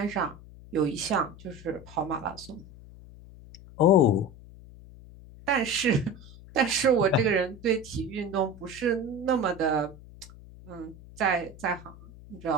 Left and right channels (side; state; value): left; noise; hum, 19 dB below the sound